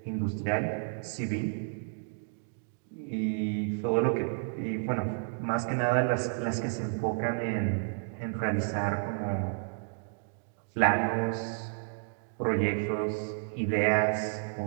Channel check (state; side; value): silent; left; 57 dB below the other